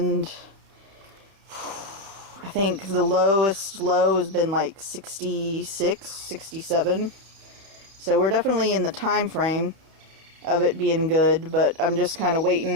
I think the lowest low has been like 66, 67. So we're definitely in the time frame of it being good, but I'm just kind of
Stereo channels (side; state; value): left; late; 31 ms